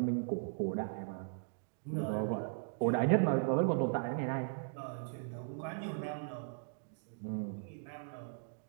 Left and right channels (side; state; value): left; silent; digital silence